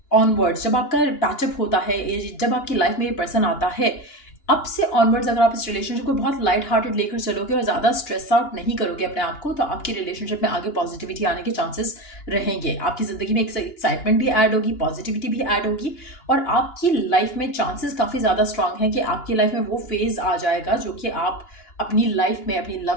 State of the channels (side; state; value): right; late; 2.9 ms